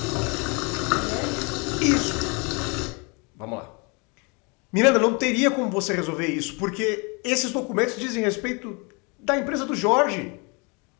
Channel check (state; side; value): quieter; right; 31.2 dB